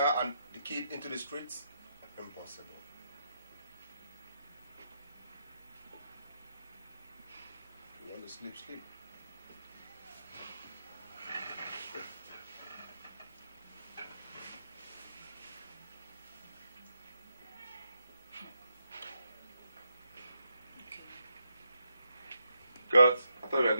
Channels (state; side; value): inverted; both; correlation -0.81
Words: and the kid into the streets? Impossible. You want to sleep, sleep. Cut. I thought we were